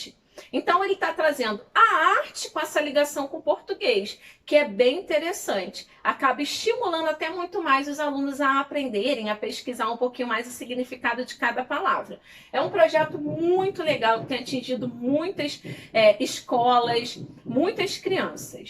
Então, ele está trazendo a arte com essa ligação com o português, que é bem interessante. Acaba estimulando até muito mais os alunos a aprenderem, a pesquisar um pouquinho mais o significado de cada palavra. É um projeto muito legal, que tem atingido muitas escolas, muitas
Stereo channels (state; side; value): identical; both; correlation 1.00